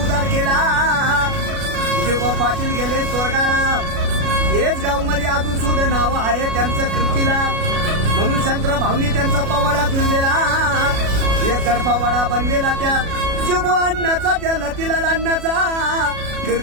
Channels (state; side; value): late; left; 37 ms